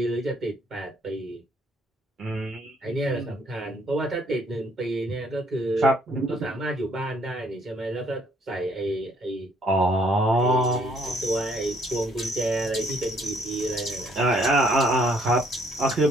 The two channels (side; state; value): both; normal; correlation 0.65